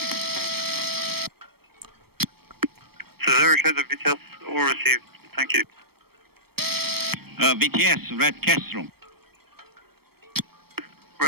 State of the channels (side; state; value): left; late; 0.96 ms